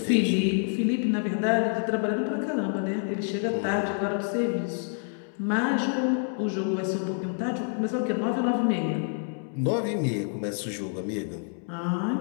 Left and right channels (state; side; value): silent; right; 56 dB below the other